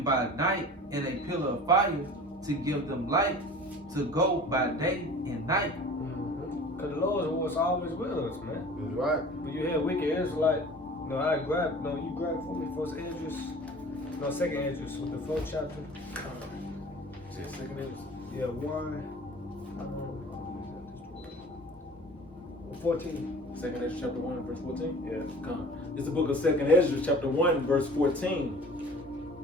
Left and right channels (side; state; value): both; normal; correlation 0.43